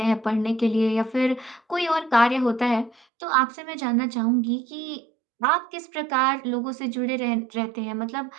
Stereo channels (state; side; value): drops out; left; at 3.1 s